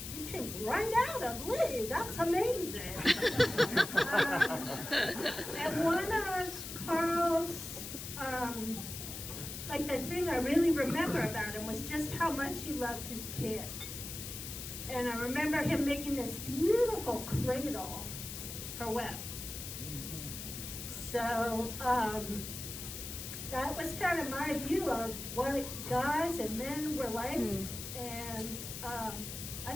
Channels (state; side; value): noise; left; hiss, 8 dB below the sound